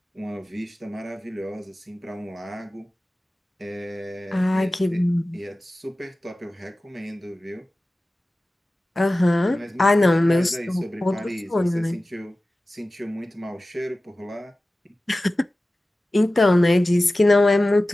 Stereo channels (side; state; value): both; normal; correlation 0.96